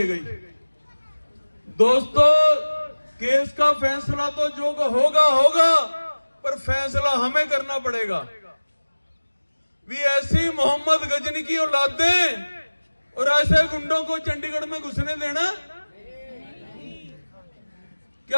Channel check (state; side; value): inverted; both; correlation -1.00